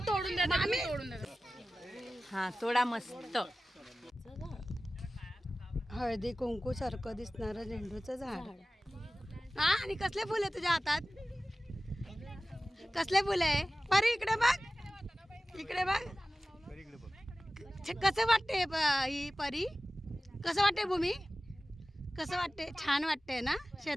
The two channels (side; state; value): both; normal; correlation 0.96